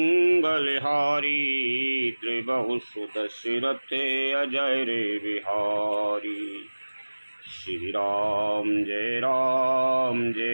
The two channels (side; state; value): both; inverted; correlation -1.00